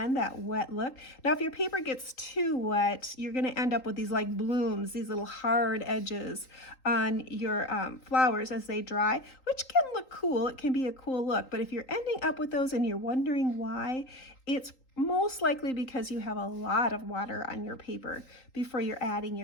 that wet look. Now, if your paper gets too wet, you're going to end up with these like blooms, these little hard edges on your flowers as they dry, which can look cool. It can be a cool look, but if you're ending up with those and you're wondering why, it's most likely because you have a lot of water on your paper before you're adding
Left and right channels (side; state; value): right; late; 3.8 ms